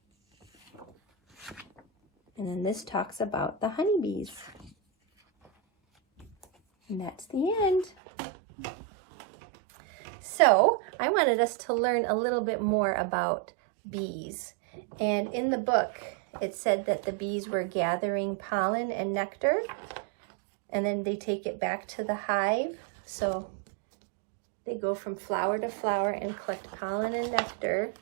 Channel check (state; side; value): drops out; left; at 7.9 s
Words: And then this talks about the honeybees. And that's the end. So I wanted us to learn a little bit more about bees. And in the book, it said that the bees were gathering pollen and nectar, and then they take it back to the hive. So they go from flower to flower and collect pollen and nectar.